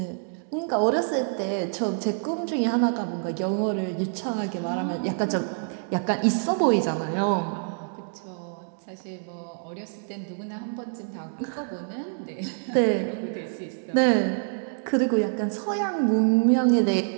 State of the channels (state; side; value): silent; left; digital silence